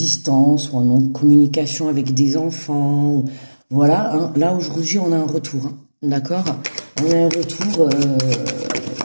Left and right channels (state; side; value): inverted; both; correlation -1.00